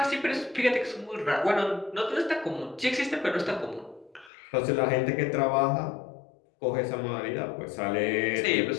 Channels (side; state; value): right; drops out; at 4.3 s